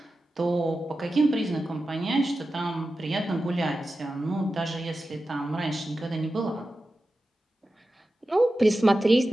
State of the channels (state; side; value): normal; both; correlation 0.93